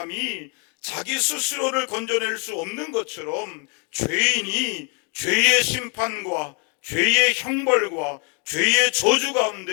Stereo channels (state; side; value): quieter; right; 37.1 dB